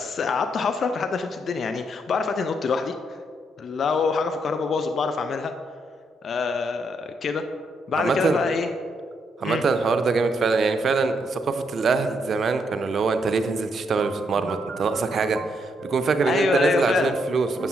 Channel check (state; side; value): normal; both; correlation 0.76